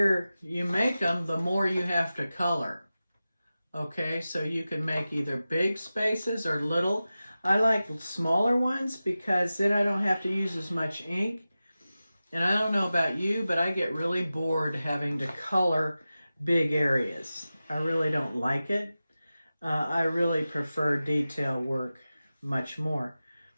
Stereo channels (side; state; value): both; inverted; correlation -0.95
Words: you make them, the more you have to color. Okay, so you can make either big spaces or little. I like smaller ones because then I don't have to use as much ink. And I don't know about you, but I get really bored having to color big areas. I really don't like it. I really prefer detail work much more.